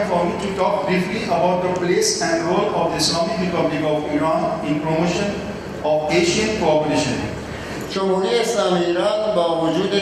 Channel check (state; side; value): identical; both; correlation 1.00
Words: for me to talk briefly about the place and role of the Islamic Republic of Iran in promotion of Asian cooperation. جمهوری اسلامی ایران با وجود